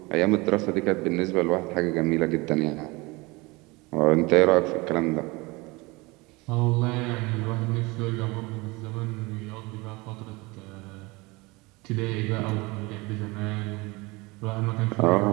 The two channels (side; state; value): left; quieter; 24.3 dB